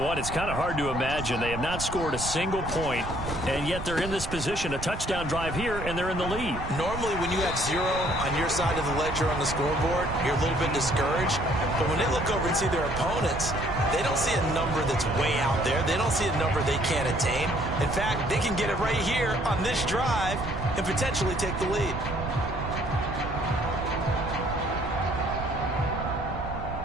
it's kind of hard to imagine. They have not scored a single point, and yet they're in this position, a touchdown drive here, and they're in the lead. Normally, when you have 0 on your side of the ledger on the scoreboard, you're a little bit discouraged. But when they look over and see their opponents, they don't see a number that's way out there. They don't see a number they can't attain. In fact, they can get it right here on this drive and potentially take the lead.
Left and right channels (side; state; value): right; noise; rumble, 8 dB below the sound